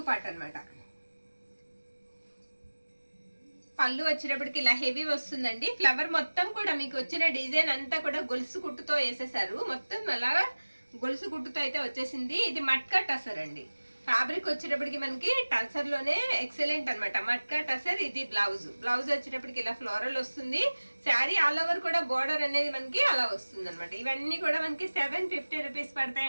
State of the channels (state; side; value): inverted; both; correlation -1.00